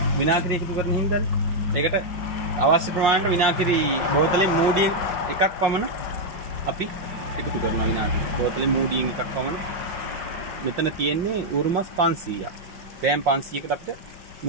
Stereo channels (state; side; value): late; left; 5.6 ms